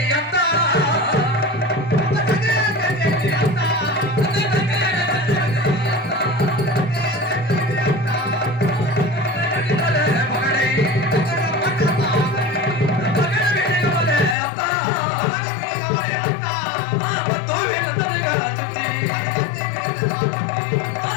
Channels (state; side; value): drops out; right; at 14.4 s